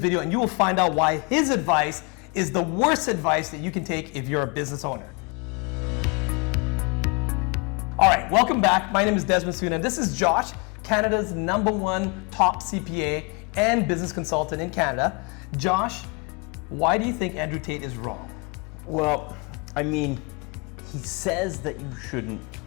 video and you will find out why his advice is the worst advice that you can take if you're a business owner. All right, welcome back. My name is Desmond Soon and this is Josh, Canada's #1 top CPA and business consultant in Canada. Josh, why do you think Andrew Tate is wrong? Well, I mean, he says that you shouldn't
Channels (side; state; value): right; quieter; 31.3 dB